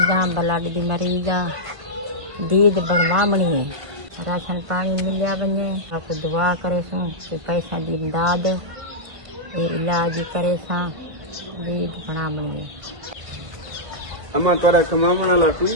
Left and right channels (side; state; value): left; late; 1.5 ms